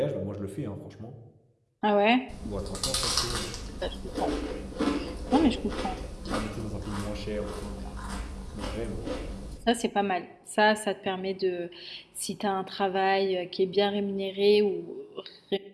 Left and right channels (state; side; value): identical; both; correlation 1.00